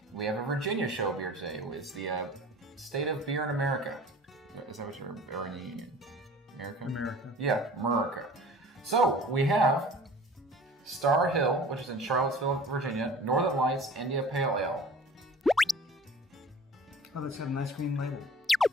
We have a Virginia show beer today. It's the State of Beer in America. Is that what you're in America? America. Yeah, America. So, we have Starr Hill, which is in Charlottesville, Virginia, Northern Lights India Pale Ale. Oh, that's got a nice green label.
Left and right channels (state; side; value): normal; both; correlation 0.44